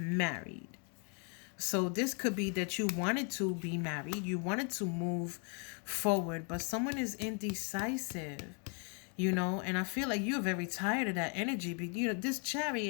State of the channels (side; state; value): right; quieter; 38.5 dB